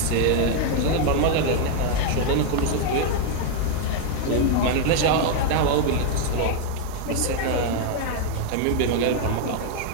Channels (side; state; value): both; different; correlation 0.00